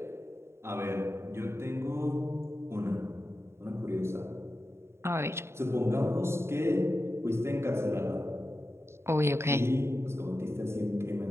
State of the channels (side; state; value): left; late; 0.12 ms